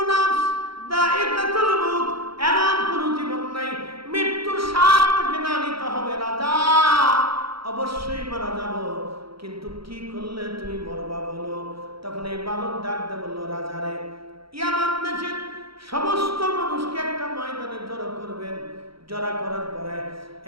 নাফস দায়িকাতুল মউত, এমন কোন জীবন নাই মৃত্যুর স্বাদ থেকে না নিতে হবে। রাজা, অবশ্যই মারা যাব, কিন্তু কি করলে তুমি মরবা বলো। তখন এই বালক ডাক দিয়ে বলল, রাজা রে, ইয়ামান দেশের সমস্ত মানুষকে একটা ময়দানে জড়ো করবেন। জড়া করার পরে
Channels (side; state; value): left; late; 0.75 ms